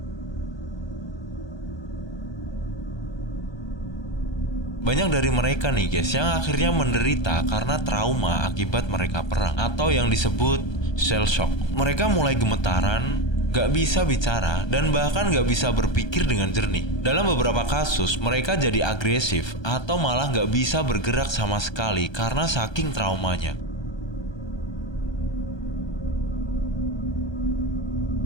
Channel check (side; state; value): right; late; 1.3 ms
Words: Banyak dari mereka nih guys yang akhirnya menderita karena trauma akibat mereka perang atau yang disebut shell shock. Mereka mulai gemetaran, gak bisa bicara, dan bahkan gak bisa berpikir dengan jernih. Dalam beberapa kasus mereka jadi agresif atau malah gak bisa bergerak sama sekali karena saking traumanya.